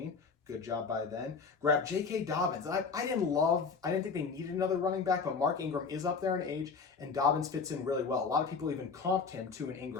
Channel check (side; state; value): right; quieter; 5.1 dB